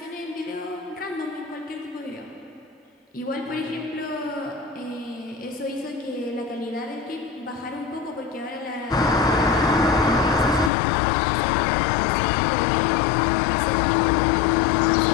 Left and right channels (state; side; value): drops out; right; at 10.7 s